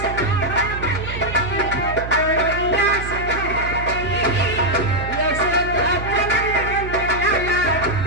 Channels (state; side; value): noise; right; hum, 8 dB below the sound